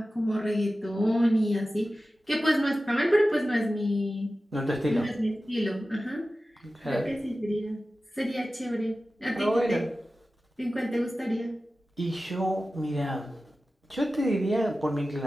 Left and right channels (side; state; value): both; normal; correlation 0.95